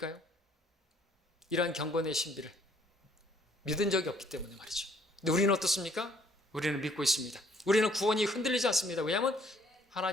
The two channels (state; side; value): normal; both; correlation 0.62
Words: 이러한 경건의 신비를 믿은 적이 없기 때문에 말이죠. 근데 우리는 어떻습니까? 우리는 믿고 있습니다. 우리는 구원이 흔들리지 않습니다. 왜냐하면